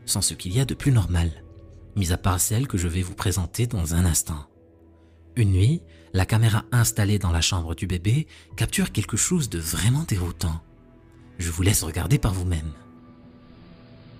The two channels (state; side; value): identical; both; correlation 1.00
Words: sont ce qu'il y a de plus normal, mis à part celle que je vais vous présenter dans un instant. Une nuit, la caméra installée dans la chambre du bébé capture quelque chose de vraiment déroutant. Je vous laisse regarder par vous-même.